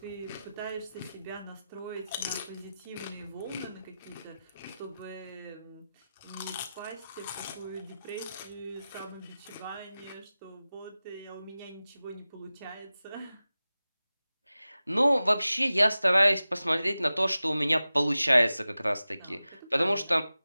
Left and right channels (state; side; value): inverted; both; correlation -0.95